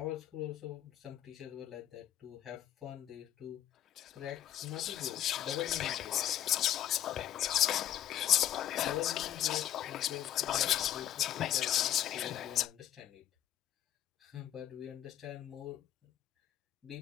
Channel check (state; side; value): quieter; right; 11.8 dB